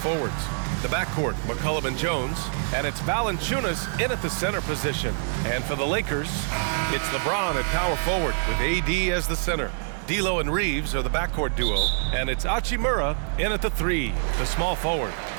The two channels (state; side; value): silent; left; digital silence